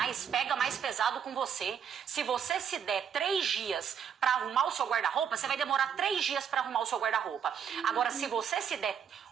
pega mais pesado com você. Se você se der 3 dias para arrumar o seu guarda-roupa, você vai demorar 3 dias para arrumar o seu guarda-roupa. Agora, se você se der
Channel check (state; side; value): quieter; left; 7.9 dB